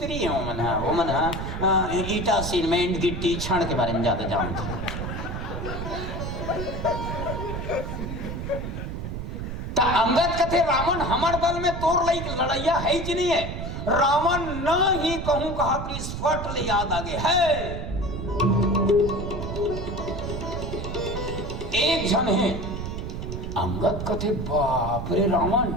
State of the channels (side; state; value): right; noise; rumble, 5 dB below the sound